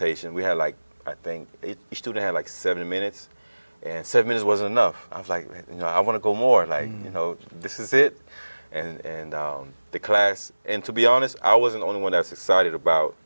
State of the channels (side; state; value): both; inverted; correlation -1.00